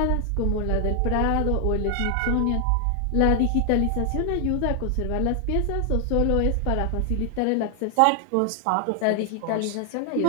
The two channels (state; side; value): different; both; correlation 0.00